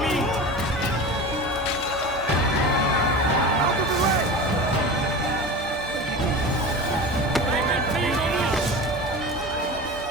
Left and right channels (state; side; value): normal; both; correlation 0.31